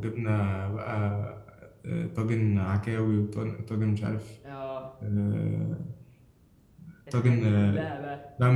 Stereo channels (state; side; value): identical; both; correlation 1.00